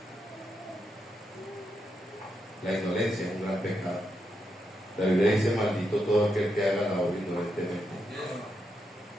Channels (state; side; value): normal; both; correlation 0.83